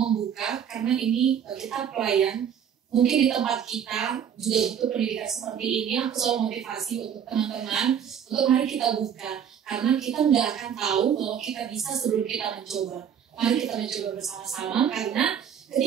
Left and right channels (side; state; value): left; quieter; 8.5 dB